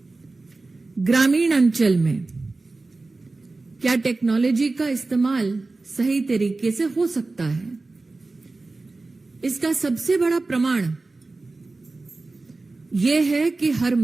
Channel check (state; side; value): quieter; left; 3.4 dB